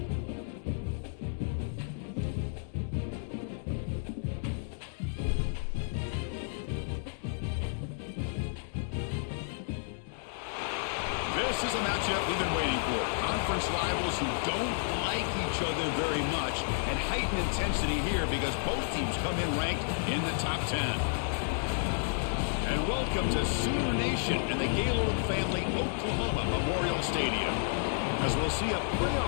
This is a matchup we've been waiting for. Conference rivals who don't like each other very much, and heightened intensity here because both teams come in ranked in the top 10. And welcome to Sooner Nation and the Gaylord Family Oklahoma Memorial Stadium, as we'll see a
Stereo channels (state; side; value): silent; right; digital silence